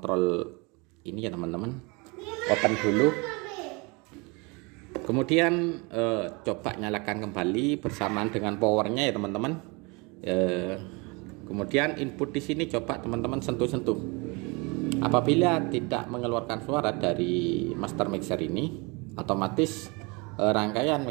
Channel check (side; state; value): left; quieter; 28.5 dB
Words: ini ya teman-teman, open dulu. Kemudian coba nyalakan kembali bersamaan dengan powernya ya teman-teman. Kemudian input di sini coba teman-teman sentuh-sentuh. Apabila tidak mengeluarkan suara dari master mixer ini, otomatis rangkaian